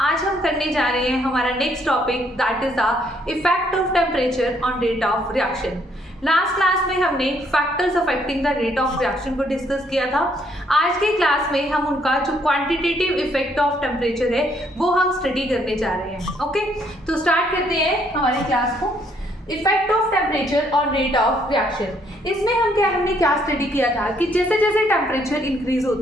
हम करने जा रहे हैं हमारा next topic that is the effect of temperature on rate of reaction. Last class में हमने factors affecting the rate of reaction को डिस्कस किया था। आज के क्लास में हम उनका जो क्वांटिटेटिव इफेक्ट ऑफ टेम्परेचर है वो हम स्टडी करने जा रहे हैं। ओके, तो स्टार्ट करते हैं हमारी क्लास को। Effect of temperature on rate of reaction. इसमें हमने क्या स्टडी किया था कि जैसे जैसे टेम्परेचर इंक्रीज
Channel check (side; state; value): both; normal; correlation 0.69